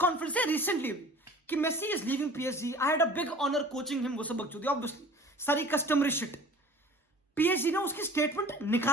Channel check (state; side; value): normal; both; correlation 0.45